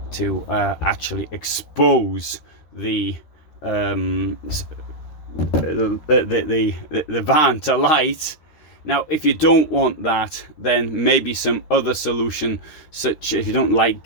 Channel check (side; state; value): right; late; 13 ms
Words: to actually expose the van to light. Now, if you don't want that, then maybe some other solution, such if you don't like